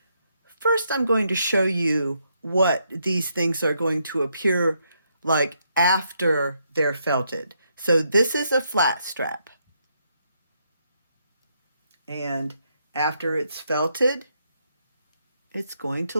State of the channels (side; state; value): both; inverted; correlation -0.77